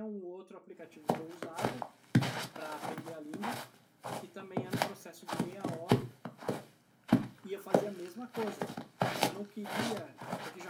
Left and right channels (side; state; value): both; identical; correlation 1.00